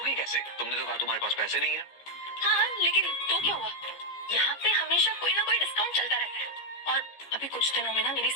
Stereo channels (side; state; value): right; late; 15 ms